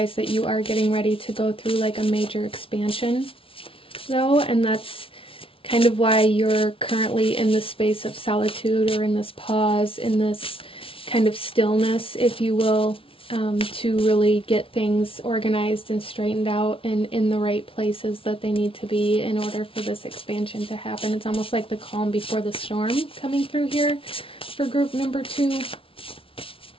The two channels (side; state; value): right; late; 0.26 ms